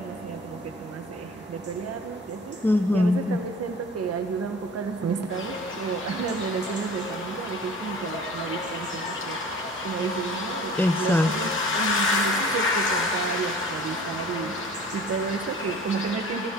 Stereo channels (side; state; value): both; normal; correlation 0.45